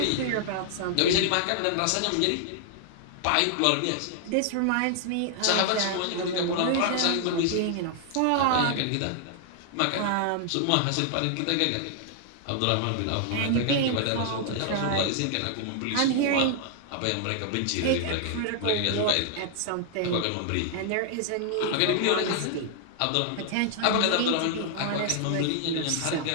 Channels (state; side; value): different; both; correlation 0.00